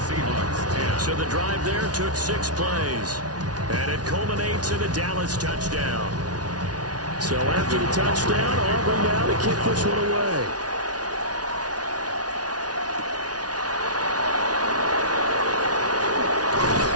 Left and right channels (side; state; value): left; late; 0.69 ms